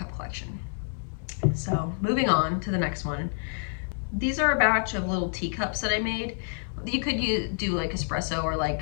collection. So moving on to the next one. These are a batch of little teacups that I made. You could do like espresso or like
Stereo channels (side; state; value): right; silent; digital silence